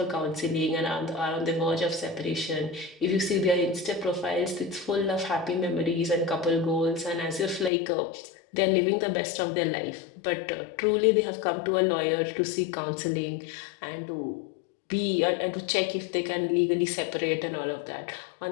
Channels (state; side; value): drops out; right; at 7.7 s